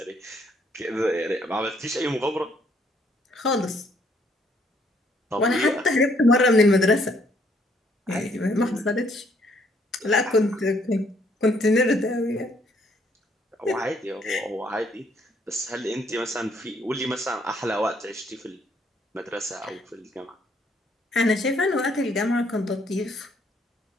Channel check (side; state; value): both; normal; correlation 0.67